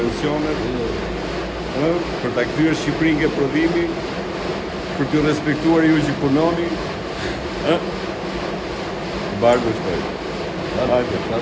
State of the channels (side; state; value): both; identical; correlation 1.00